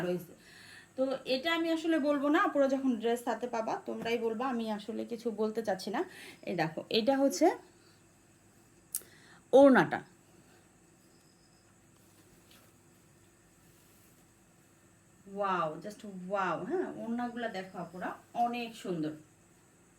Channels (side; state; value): both; identical; correlation 1.00